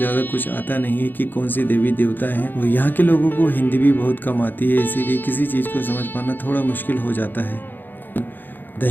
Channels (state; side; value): late; right; 0.091 ms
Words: कुछ आता नहीं है कि कौन सी देवी देवता हैं। और यहाँ के लोगों को हिंदी भी बहुत कम आती है, इसीलिए किसी चीज़ को समझ पाना थोड़ा मुश्किल हो जाता है।